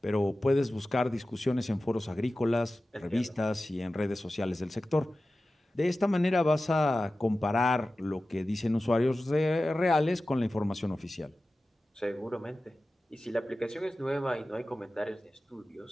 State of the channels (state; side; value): normal; both; correlation 0.95